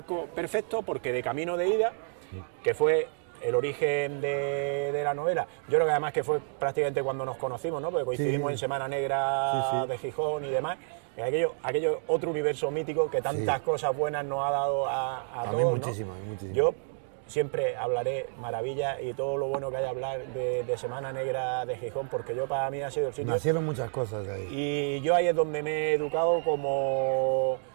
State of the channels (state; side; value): silent; left; digital silence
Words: perfecto porque de Camino de Ida, que fue el origen de la novela, yo creo que además que fue prácticamente cuando nos conocimos, ¿no? Porque coincidimos en Semana Negra de Gijón y demás. Aquello otro universo mítico que tantas cosas buenas nos ha dado a todos, muchísimo, ¿no? Muchísimo. Yo siempre hablaré maravillas y todo lo bueno que hay a hablar de Semana Negra de Gijón, porque yo para mí ha sido el sitio... Nacieron muchas cosas ahí. Y yo ahí es donde me he educado como